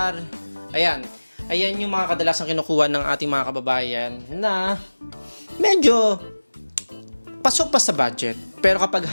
Ayan. Ayan yung mga kadalasang kinukuha ng ating mga kababayan na medyo pasok pa sa budget. Pero kapag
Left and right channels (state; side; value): inverted; both; correlation -1.00